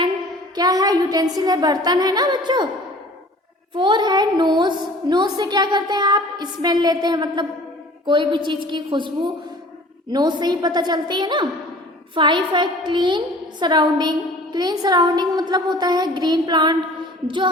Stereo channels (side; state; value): both; normal; correlation 0.47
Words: क्या है? यूटेंसिल है, बर्तन है ना बच्चों। 4 है नोज से क्या करते हैं आप? स्मेल लेते हैं, मतलब कोई भी चीज़ की खुशबू नोज से ही पता चलती है ना। 5 है क्लीन सराउंडिंग मतलब होता है ग्रीन प्लांट, जो